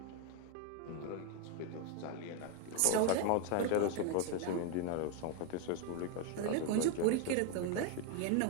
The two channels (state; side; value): different; both; correlation 0.01